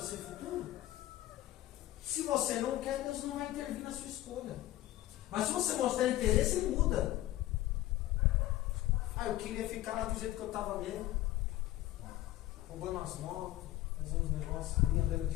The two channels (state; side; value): quieter; right; 15.6 dB